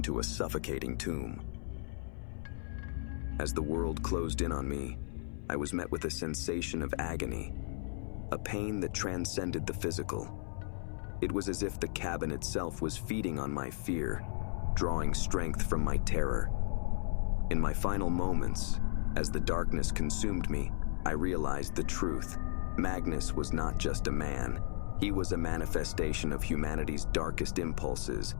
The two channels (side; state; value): right; silent; 55 dB below the other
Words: a suffocating tomb. As the world closed in on me, I was met with a sensation of agony, a pain that transcended the physical. It was as if the cabin itself was feeding on my fear, drawing strength from my terror. In my final moments, as the darkness consumed me, I realized the truth. Magnus was not just a man. He was a manifestation of humanity's darkest impulses,